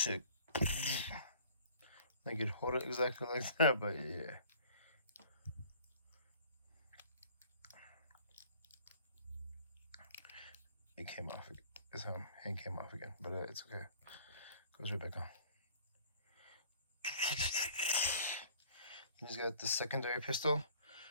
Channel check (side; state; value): both; inverted; correlation -0.53